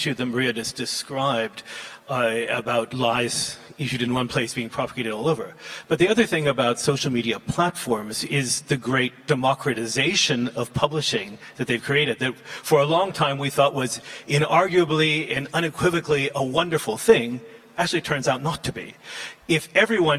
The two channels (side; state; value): both; identical; correlation 1.00